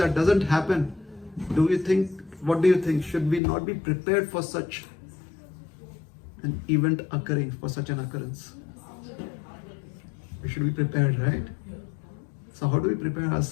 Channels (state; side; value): drops out; right; at 3.4 s